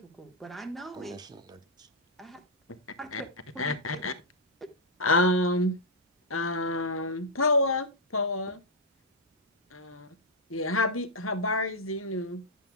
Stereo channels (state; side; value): normal; both; correlation -0.07